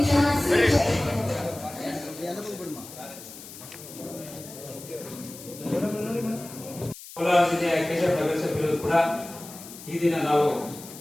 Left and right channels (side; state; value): left; noise; hiss, 15 dB below the sound